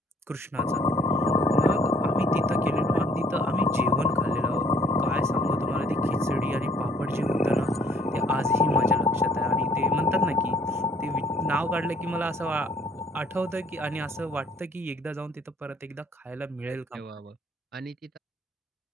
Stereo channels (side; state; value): both; normal; correlation 0.61